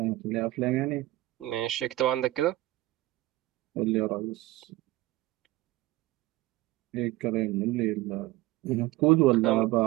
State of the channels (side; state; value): left; quieter; 17.8 dB